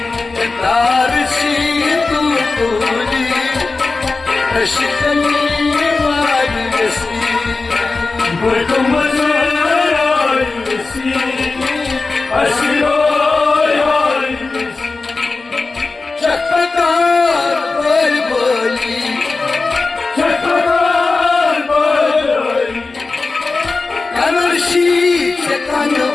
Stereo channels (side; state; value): right; quieter; 3.8 dB